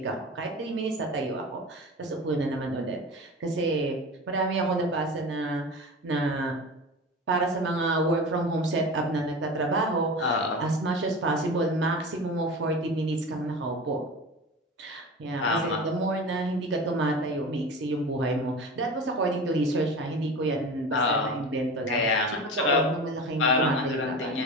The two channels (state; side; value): normal; both; correlation 0.31